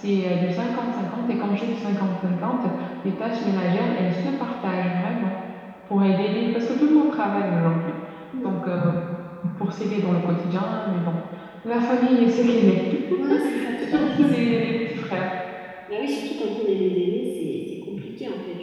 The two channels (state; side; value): identical; both; correlation 1.00